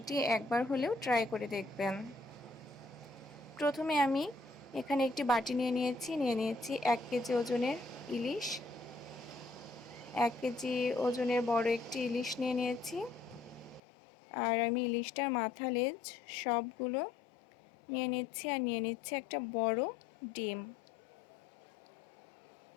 একবার হলেও ট্রাই করে দেখবেন। প্রথমে আমি এখানে একটি বাটি নিয়ে নিয়েছি 1 কেজি ওজনের ইলিশ। 1 কেজি ওজনের বড় একটি ইলিশ নিয়ে নিয়েছি। আর আমি ইলিশটার মাথা লেজ সবগুলো নিয়ে নিচ্ছি। আর নিয়ে নিচ্ছি একটা বড় ডিম।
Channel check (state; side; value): drops out; right; at 13.8 s